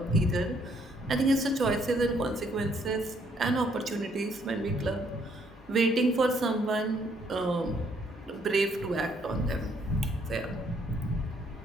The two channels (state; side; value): normal; both; correlation 0.68